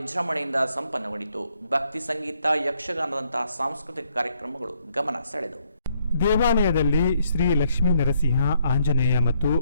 ಸಂಪನ್ನಗೊಂಡಿತು. ಭಕ್ತಿ ಸಂಗೀತ, ಯಕ್ಷಗಾನದಂತಹ ಸಾಂಸ್ಕೃತಿಕ ಕಾರ್ಯಕ್ರಮಗಳು ಗಮನ ಸೆಳೆದವು. ದೇವಾಲಯದಲ್ಲಿ ಶ್ರೀ ಲಕ್ಷ್ಮೀ ನರಸಿಂಹ, ಆಂಜನೇಯ ಮತ್ತು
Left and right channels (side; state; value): both; inverted; correlation -0.71